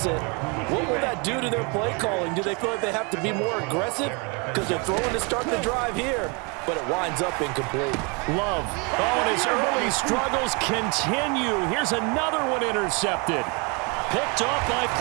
what will that do to their play calling? Do they feel like they have to be more aggressive? Because they're throwing to start the drive here, but it winds up incomplete. Love. Oh, and his early struggles continue. Here's another one intercepted. Picked off by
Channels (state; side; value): quieter; left; 31.6 dB